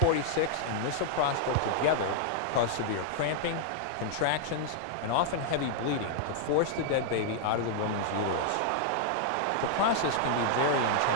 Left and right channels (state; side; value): different; both; correlation -0.01